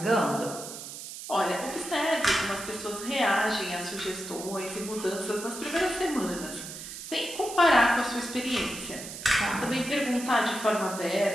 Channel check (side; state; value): right; noise; hiss, 10 dB below the sound